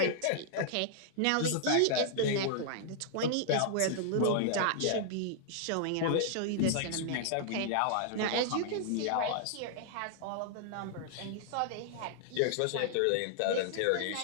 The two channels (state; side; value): different; both; correlation -0.01